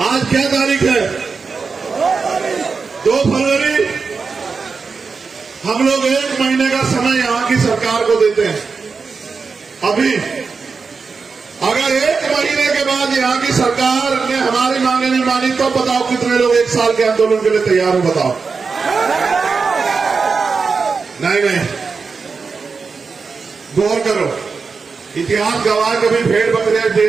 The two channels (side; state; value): left; quieter; 4.9 dB